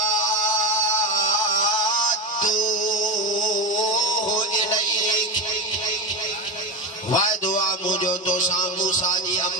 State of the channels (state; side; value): normal; both; correlation 0.16